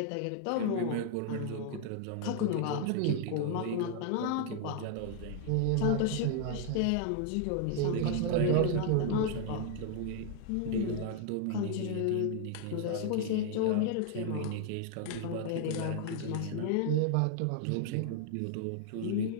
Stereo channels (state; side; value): different; both; correlation 0.00